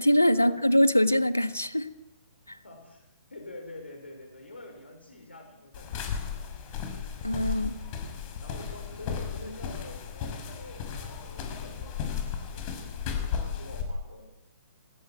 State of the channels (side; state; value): both; inverted; correlation -0.85